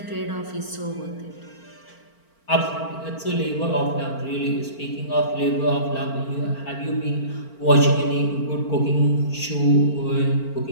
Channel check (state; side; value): late; right; 4.4 ms